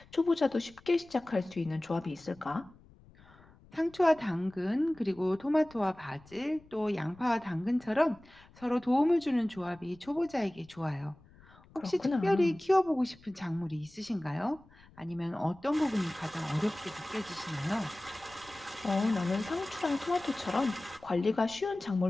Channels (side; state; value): left; noise; rumble, 25 dB below the sound